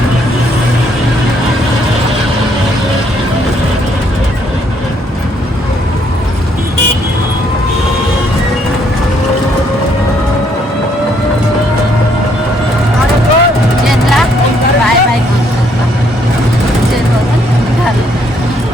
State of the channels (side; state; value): both; normal; correlation 0.69